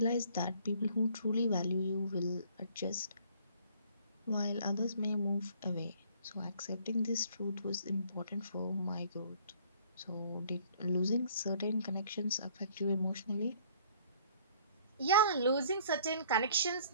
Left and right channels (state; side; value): inverted; both; correlation -0.58